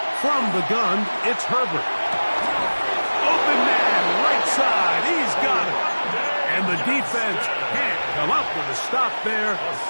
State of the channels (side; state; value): both; inverted; correlation -1.00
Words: From the gun, it's Herbert. Open man, right side. He's got it. And the defense can't come up with a stop there.